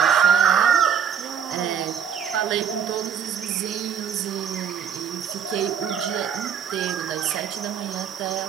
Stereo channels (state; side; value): quieter; left; 7.9 dB